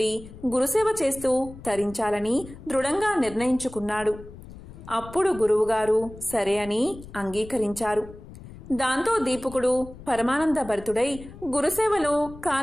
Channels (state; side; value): noise; left; rumble, 16 dB below the sound